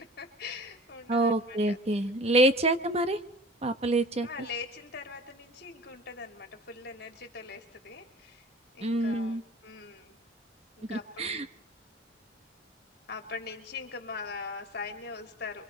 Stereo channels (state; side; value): normal; both; correlation 0.42